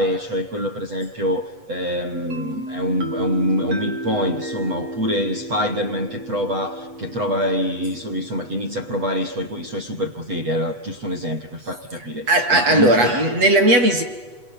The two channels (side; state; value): left; late; 8.1 ms